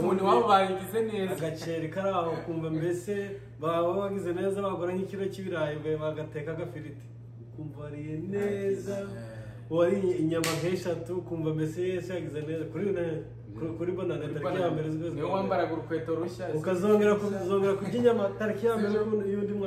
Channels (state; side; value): identical; both; correlation 1.00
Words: wabo bagize neza agaceri kari aho kumva mbese baba bagize neza bagura nk'ikiro cy'ibirayi bagateka agafiriti ukumva wariye neza wari inyama nk'eshatu ukumva mbese yese yagize neza kuri bonane tariki ya mbere z'ukwezi niyo wambaraga urukweto rushya ukazongera kurya inyama tariki ya mbere y'undi